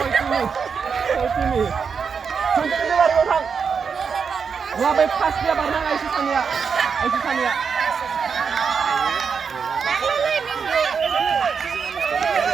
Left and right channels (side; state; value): left; quieter; 6.1 dB